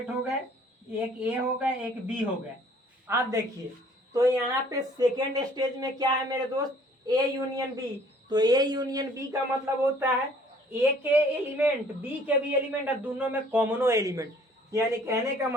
हो गए, एक ए हो गए एक बी हो गए। अब देखिए तो यहाँ पे सेकेंड स्टेज में क्या है मेरे दोस्त, ए यूनियन बी। तो ए यूनियन बी का मतलब होता है ए के एलिमेंट बी के भी एलिमेंट और दोनों में कॉमनो एलिमेंट। यानी कहने का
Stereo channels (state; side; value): normal; both; correlation 0.56